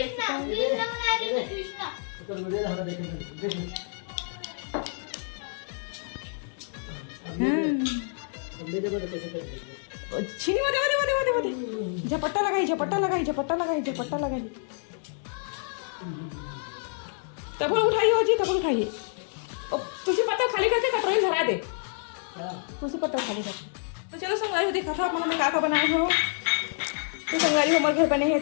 सकते हैं। कृष्णा बना रही है कृष्णा छीनी मत झपट्टा लगाई झपट्टा लगाई झपट्टा लगाई झपट्टा लगाई। तब उठाइए हो जी, तब उठाइए। तुझे पत्ता खाली करके कटोरी धरा दे। तुझे पत्ता खाली कर। तो चलो संगवारी हो, देखा था अपना का बनाए हो। तो संगवारी हो हमारे घर बने हैं,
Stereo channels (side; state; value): right; silent; 59 dB below the other